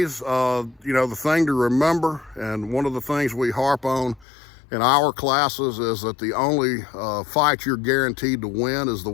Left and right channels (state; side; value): drops out; right; at 4.2 s